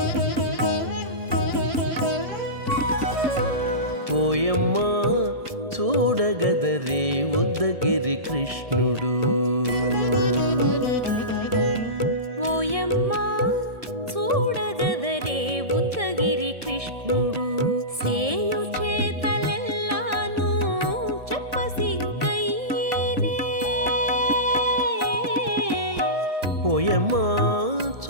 ఓయమ్మా చూడగదరే ఉద్దగిరి కృష్ణుడు. ఓయమ్మా చూడగదరే ఉద్దగిరి కృష్ణుడు. సేయు చేతలెల్లాను చెప్పసిగ్గయ్యేనే. ఓయమ్మా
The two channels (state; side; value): late; left; 1.7 ms